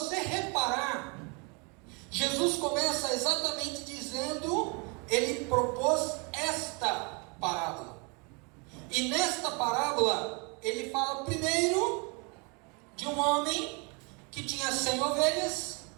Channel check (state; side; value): quieter; left; 32.3 dB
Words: reparar, Jesus começa exatamente dizendo, ele propôs esta parábola, e nesta parábola ele fala primeiro de um homem que tinha 100 ovelhas